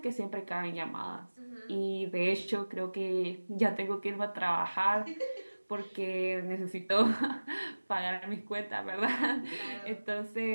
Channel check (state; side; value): inverted; both; correlation -1.00